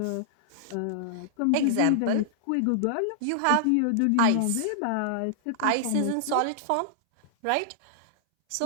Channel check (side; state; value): both; different; correlation -0.01